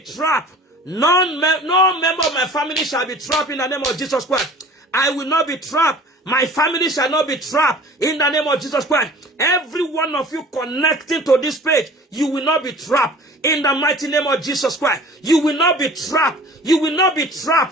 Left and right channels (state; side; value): normal; both; correlation 0.45